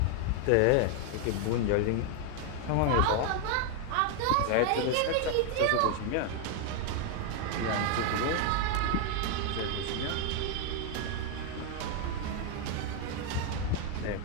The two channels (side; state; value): both; different; correlation 0.01